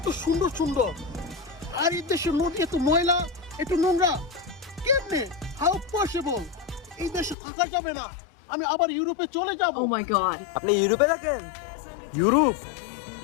সুন্দর সুন্দর, আর এই দেশের নদী এত ময়লা, এত নোংরা। কেমনে? How possible? এই দেশে থাকা যাবে না। আমি আবার ইউরোপে চলে যাব। Oh my god. আপনি ইউরোপে থাকেন? ইউরোপ?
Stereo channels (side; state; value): right; drops out; at 7.4 s